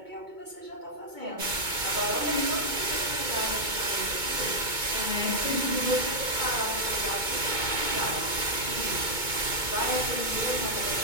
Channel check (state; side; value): late; left; 2.2 ms